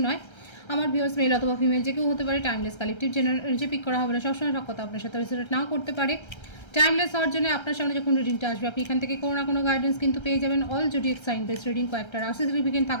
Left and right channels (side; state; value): right; late; 1.3 ms